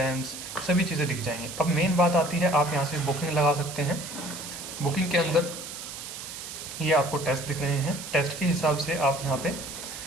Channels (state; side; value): noise; right; hiss, 10 dB below the sound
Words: सभी चीज़ें दिख जाएंगी। अब मेन बात आती है, आप यहाँ से बुकिंग लगा सकते हैं। बुकिंग के अंदर ये आपको टेस्ट दिख रहे हैं, टेस्ट के हिसाब से आप यहाँ पे